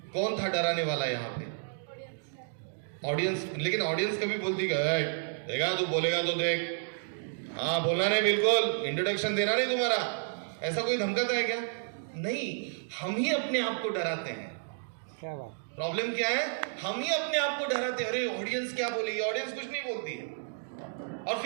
कौन था डराने वाला यहाँ पे, ऑडियंस। लेकिन ऑडियंस कभी बोलती देखा तू बोलेगा तो देख, हाँ बोलना नहीं, बिल्कुल इंट्रोडक्शन देना नहीं तुम्हारा, ऐसा कोई धमकाता है क्या? नहीं, हम ही अपने आप को डराते हैं। क्या बात, प्रॉब्लम क्या है, हम ही अपने आप को डराते हैं, अरे ऑडियंस क्या बोलेगी, ऑडियंस कुछ नहीं बोलती है। और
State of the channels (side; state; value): left; silent; digital silence